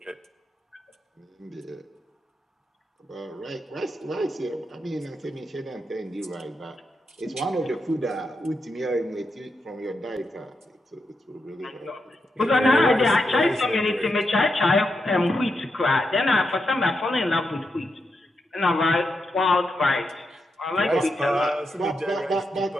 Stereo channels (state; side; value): normal; both; correlation 0.85